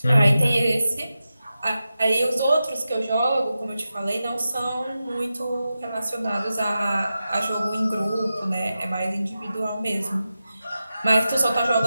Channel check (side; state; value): both; inverted; correlation -0.92